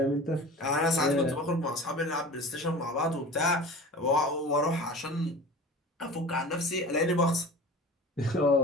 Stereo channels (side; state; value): both; normal; correlation 0.37